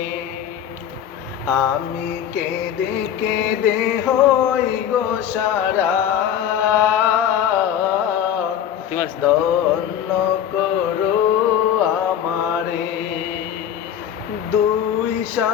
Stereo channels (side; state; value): right; quieter; 9.7 dB